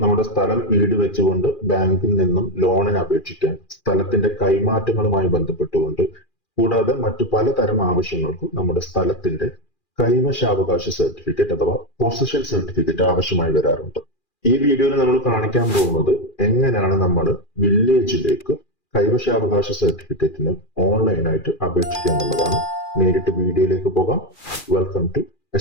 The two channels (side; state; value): right; late; 2.4 ms